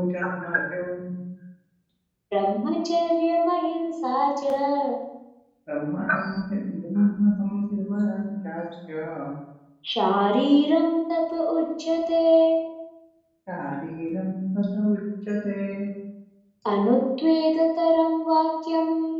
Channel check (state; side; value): identical; both; correlation 1.00